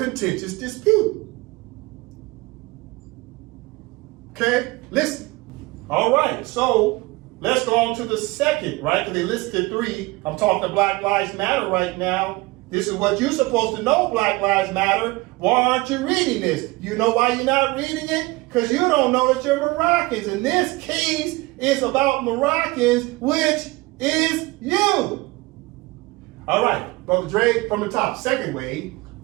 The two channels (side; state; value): left; quieter; 22.4 dB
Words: dispute. Okay, listen. All right, so let's go on to the second, right? Because they listed 3. I'm talking Black Lives Matter right now. This is what you're supposed to know, Black Lives Matter. Why aren't you reading this? You know why you're not reading it? Because you don't know that you're Moroccans. And this case is about Moroccans, which is you. All right, Brother Dre, from the top. Second way.